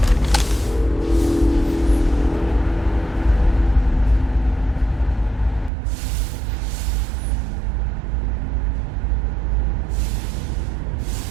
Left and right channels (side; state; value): left; drops out; at 5.7 s